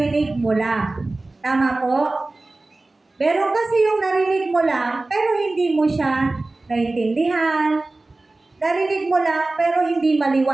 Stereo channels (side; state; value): left; quieter; 3.1 dB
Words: mo lang. Tama po? Meron kasi yung narinig mo lang, pero hindi mo siya naintindihan. Narinig mo lang, pero hindi